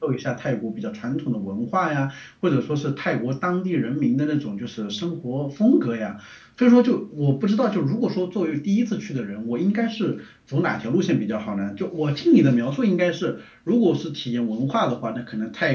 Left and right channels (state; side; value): identical; both; correlation 1.00